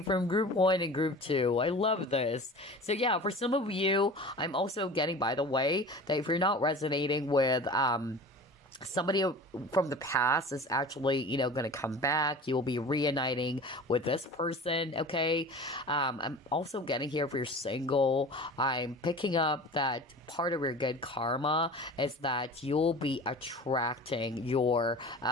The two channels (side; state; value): both; normal; correlation 0.38